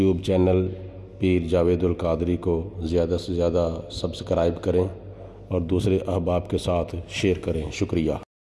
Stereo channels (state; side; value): identical; both; correlation 1.00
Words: چینل پیر جاوید القادری کو زیادہ سے زیادہ سبسکرائب کریں اور دوسرے احباب کے ساتھ شیئر کریں۔ شکریہ۔